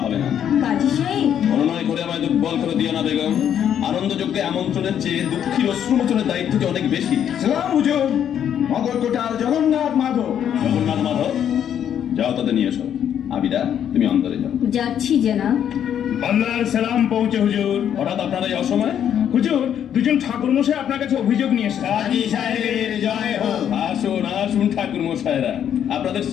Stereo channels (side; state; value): right; quieter; 9.4 dB